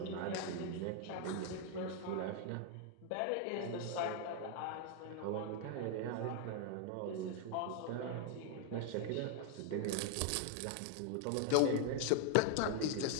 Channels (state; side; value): different; both; correlation 0.00